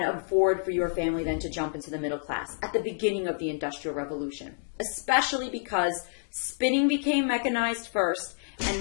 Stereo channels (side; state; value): right; silent; digital silence